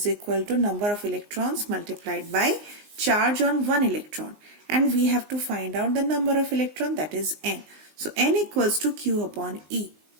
equal to number of electrons multiplied by charge on one electron, and we have to find out the number of electron, that is n. So n equals to Q upon E.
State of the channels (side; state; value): left; late; 19 ms